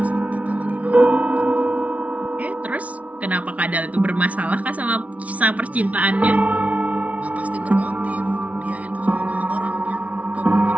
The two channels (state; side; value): late; left; 0.067 ms